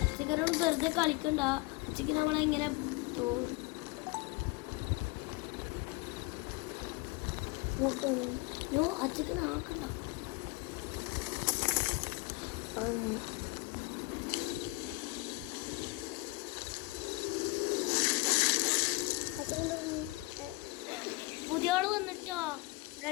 അച്ഛക്കരോട് വെറുതെ കളിക്കണ്ട. അച്ഛക്ക് നമ്മളെങ്ങനെ അച്ഛക്ക് ആക്കണ്ട. പുതിയ ആള് വന്നിട്ടോ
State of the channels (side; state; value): right; quieter; 23.6 dB